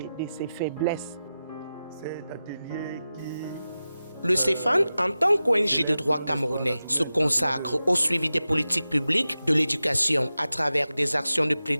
faiblesses. Cet atelier qui... Le CEFAN, en tant qu'ONG de droit camerounais, se consacre au suivi des politiques publiques de l'éducation à travers des actions de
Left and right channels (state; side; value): inverted; both; correlation -0.93